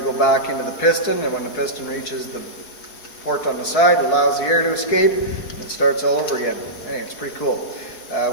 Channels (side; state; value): right; late; 4.6 ms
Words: back into the piston, and when the piston reaches the port on the side, it allows the air to escape, and it starts all over again. Anyway, it's pretty cool.